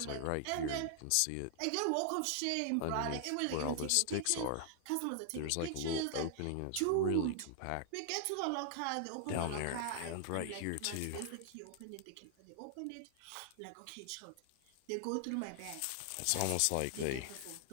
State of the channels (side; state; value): both; different; correlation 0.00